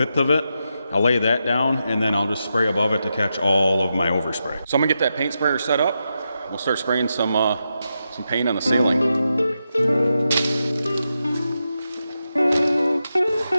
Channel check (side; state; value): both; inverted; correlation -0.87